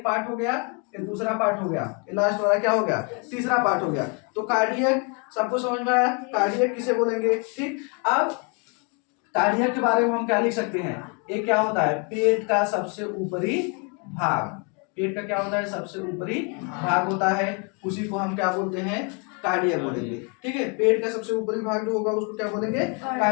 पार्ट हो गया, ये दूसरा पार्ट हो गया, ये लास्ट वाला क्या हो गया, तीसरा पार्ट हो गया। तो कार्डियक सबको समझ में आया, कार्डियक किसे बोलेंगे, ठीक। अब कार्डियक के बारे में हम क्या लिख सकते हैं, ये क्या होता है, पेट का सबसे ऊपरी भाग। पेट का क्या होता है, सबसे ऊपरी भाग होता है, उसी को हम क्या बोलते हैं, कार्डियक बोलेंगे, ठीक है। पेट का सबसे ऊपरी भाग जो होगा उसको क्या बोलेंगे,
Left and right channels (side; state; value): right; quieter; 35.4 dB